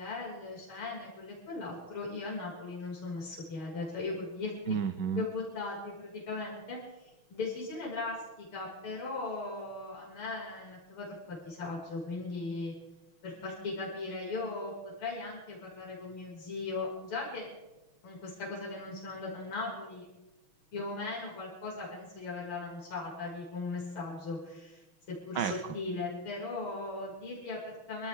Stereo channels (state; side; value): late; right; 6.3 ms